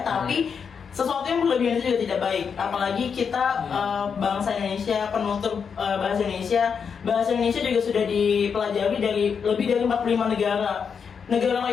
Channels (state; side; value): quieter; right; 6.4 dB